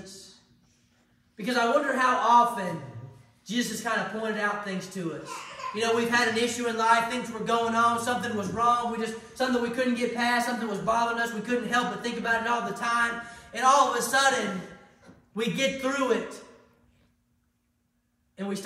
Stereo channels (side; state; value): both; identical; correlation 1.00